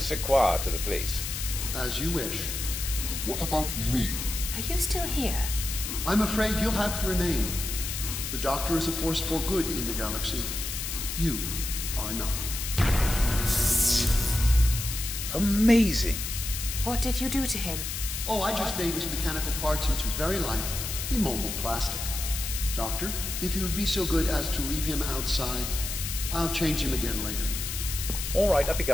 quoi to the place. As you wish. What about me? Are you still here? I'm afraid you'll have to remain. The Doctor is a force for good in the galaxy. You are not. Amazing. What did you do to him? Oh, I just made his mechanical parts into very light, immobile plastic. Doctor, if you would be so good as to leave him outside, I'll change him again later. All right, I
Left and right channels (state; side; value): noise; left; hiss, 5 dB below the sound